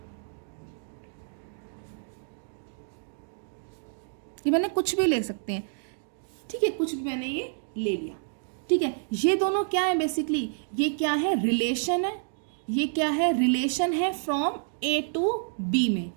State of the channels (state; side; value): silent; left; digital silence